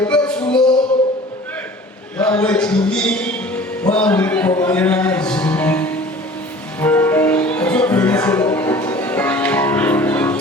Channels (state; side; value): normal; both; correlation 0.45